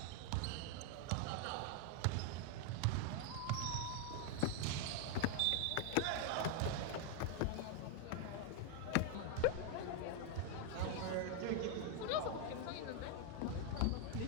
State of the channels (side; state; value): both; different; correlation 0.00